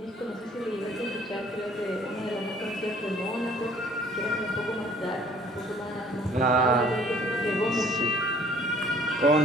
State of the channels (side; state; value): both; normal; correlation 0.56